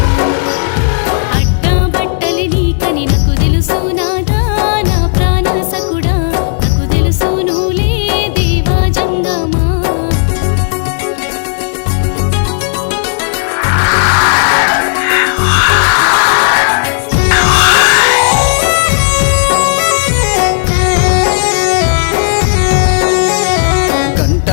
అడ్డా బట్టలి నీకని నాకు తెలుసు నాదా నా ప్రాణసకుడా నాకు తెలుసు నువ్వులే దేవా జంగమా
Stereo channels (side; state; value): right; silent; digital silence